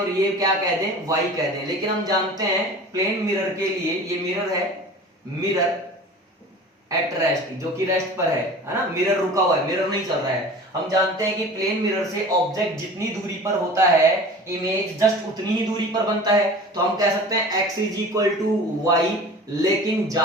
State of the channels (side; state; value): both; normal; correlation 0.40